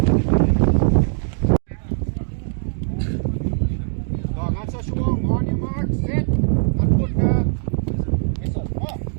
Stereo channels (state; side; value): silent; left; digital silence